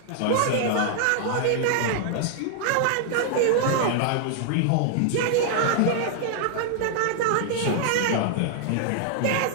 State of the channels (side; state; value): both; different; correlation -0.01